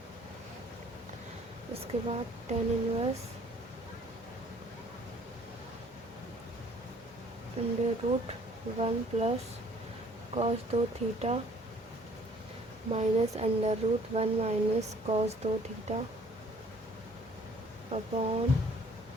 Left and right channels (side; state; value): both; normal; correlation 0.57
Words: उसके बाद tan inverse under root 1 plus cos 2 theta minus under root 1 minus cos 2 theta upon